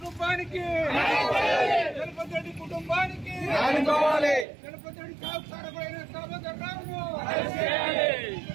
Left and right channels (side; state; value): left; drops out; at 4.5 s